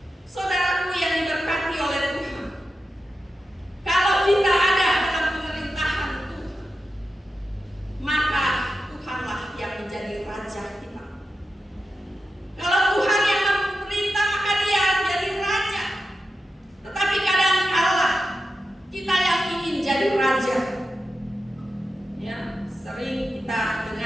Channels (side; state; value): both; normal; correlation 0.90